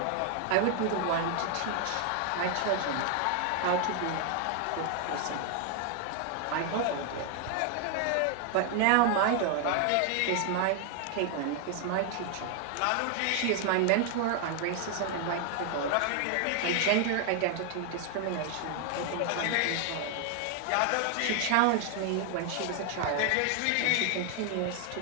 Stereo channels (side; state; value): both; different; correlation 0.00